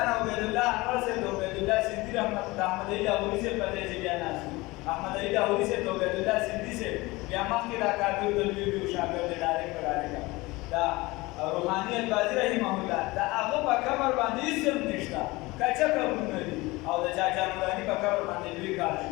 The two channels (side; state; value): right; quieter; 21.9 dB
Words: عبید الله انور صاحب د عبید الله سندي رحمت د احمد علي لاهوري صاحب په دې چې بیا ناست احمد علي لاهوري صاحب د عبید الله سندي صاحب بیا مخکې دا کابل د لوی شاګرد ډایرکټ دا روحاني البازي رحمه الله دا هغه په قبر باندې هېڅ نشته کچه قبرونه دي او د چاچا نوراني په قبر باندې لوی کار